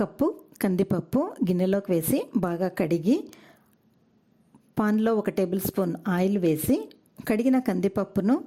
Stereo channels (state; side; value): identical; both; correlation 1.00